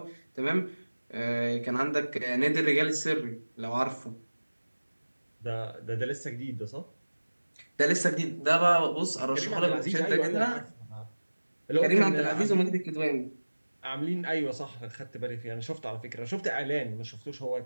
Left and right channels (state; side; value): inverted; both; correlation -1.00